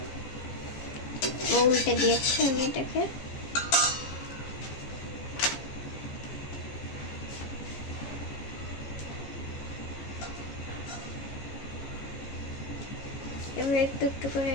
উল্টে দিয়েছি আমি এটাকে। এবার একটু করে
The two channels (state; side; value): late; right; 14 ms